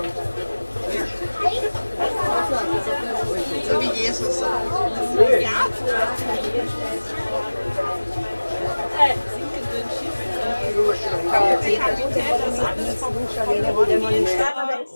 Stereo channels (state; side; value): inverted; both; correlation -1.00